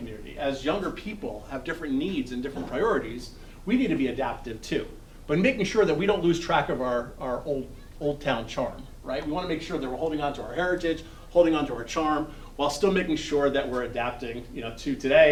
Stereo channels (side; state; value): both; identical; correlation 1.00